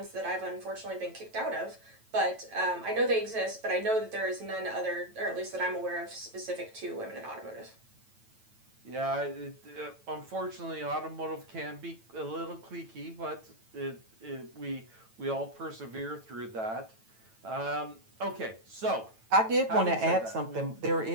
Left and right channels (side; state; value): left; late; 9.0 ms